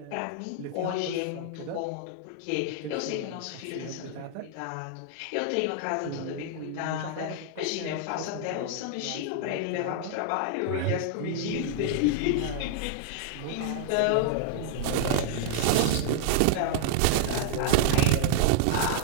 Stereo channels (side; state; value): both; different; correlation -0.01